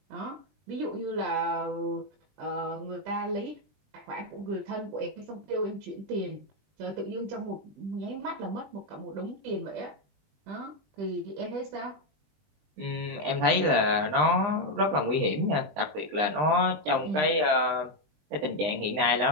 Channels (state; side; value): late; left; 20 ms